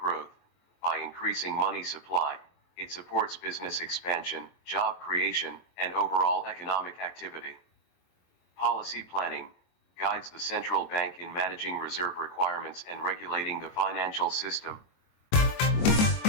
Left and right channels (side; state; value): right; late; 23 ms